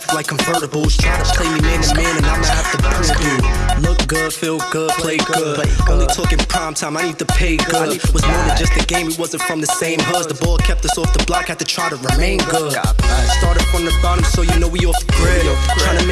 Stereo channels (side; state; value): both; identical; correlation 1.00